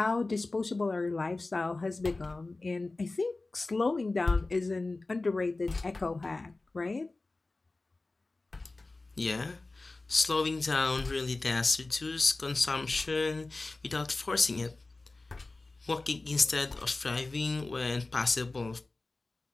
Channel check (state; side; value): quieter; right; 3.2 dB